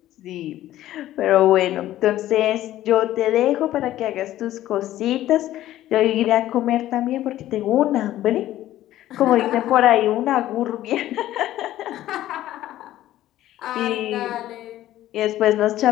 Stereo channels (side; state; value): right; quieter; 13.8 dB